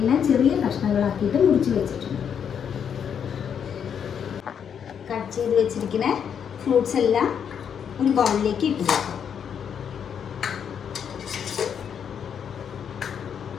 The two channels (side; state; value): right; quieter; 7.9 dB